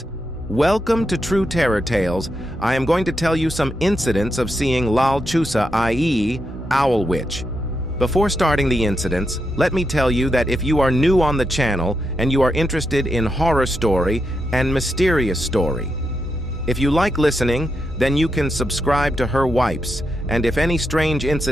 Welcome to True Terror Tales. I am going to tell you some incidents of seeing La-Lechuza, i.e., Owl Witch. Before starting the incidents, let me tell you that if you are new on the channel and you are interested in horror story and mysterious story, if you like listening, then you can subscribe to her wipes, and if any strange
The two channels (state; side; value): normal; both; correlation 0.84